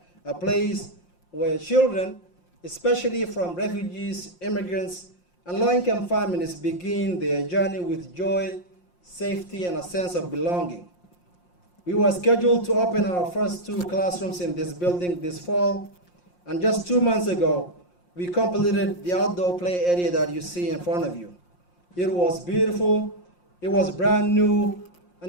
a place where children, especially from refugees, immigrants, and low-income families, begin their journey with joy, safety, and a sense of belonging. We were scheduled to open our first 2 classrooms in this building this fall, and just 2 months ago, we completed the outdoor play area that you see in front of you. It was beautiful, it was brand new,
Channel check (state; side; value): late; right; 5.6 ms